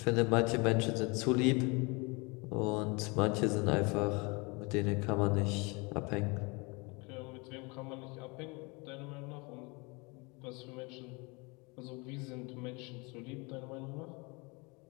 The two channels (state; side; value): quieter; right; 28.4 dB